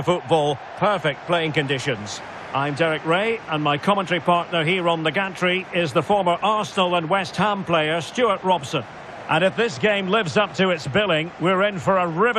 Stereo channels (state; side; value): identical; both; correlation 1.00